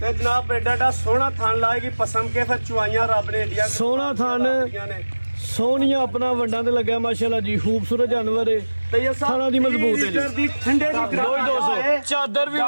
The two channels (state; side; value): inverted; both; correlation -1.00